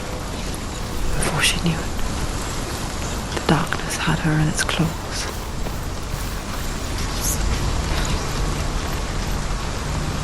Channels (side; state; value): both; identical; correlation 1.00